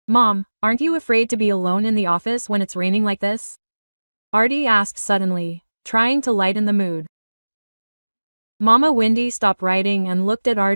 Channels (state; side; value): inverted; both; correlation -1.00